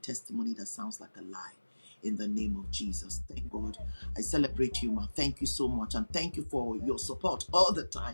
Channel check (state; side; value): inverted; both; correlation -1.00